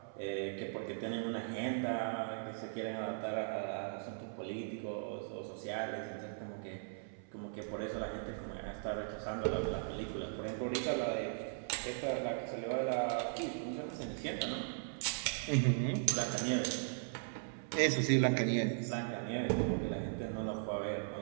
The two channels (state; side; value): silent; left; 52 dB below the other